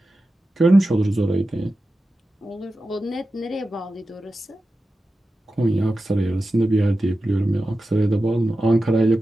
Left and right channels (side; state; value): both; normal; correlation 0.93